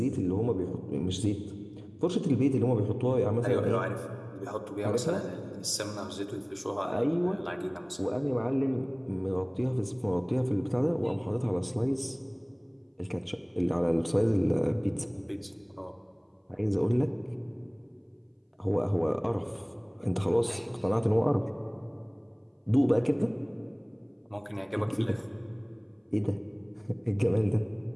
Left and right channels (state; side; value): identical; both; correlation 1.00